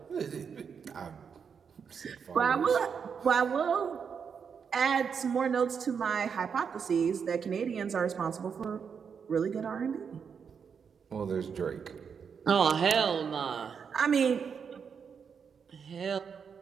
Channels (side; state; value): left; quieter; 6.6 dB